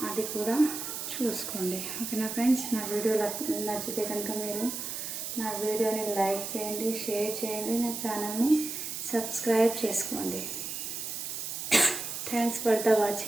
అది కూడా చూసుకోండి. ఓకేనా ఫ్రెండ్స్, నా వీడియో నచ్చితే కనుక మీరు నా వీడియోని లైక్ చేయండి, షేర్ చేయండి, నా ఛానల్ని సబ్స్క్రైబ్ చేసుకోండి. Thanks for the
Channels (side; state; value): right; noise; hiss, 5 dB below the sound